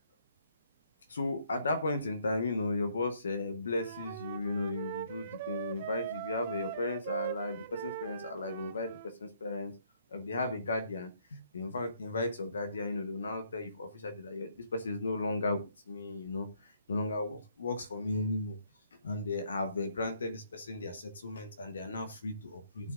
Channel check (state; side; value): inverted; both; correlation -0.68